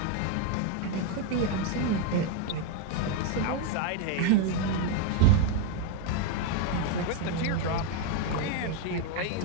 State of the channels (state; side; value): different; both; correlation 0.01